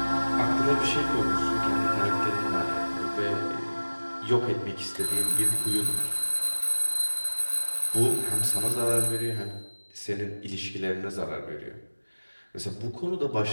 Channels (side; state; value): both; inverted; correlation -1.00